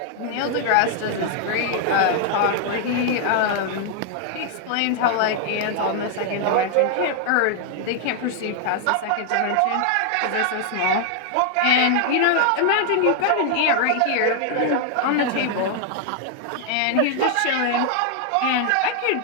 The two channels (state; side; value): different; both; correlation 0.00